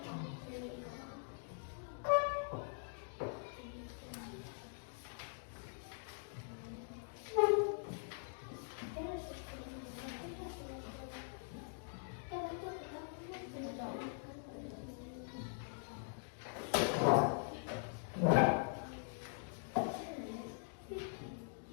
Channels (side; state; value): right; silent; digital silence